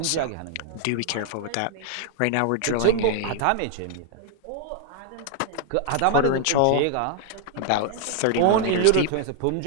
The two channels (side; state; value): both; different; correlation 0.00